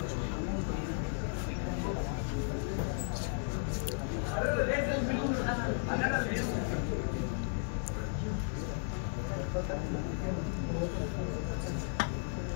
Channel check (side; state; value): right; silent; 55 dB below the other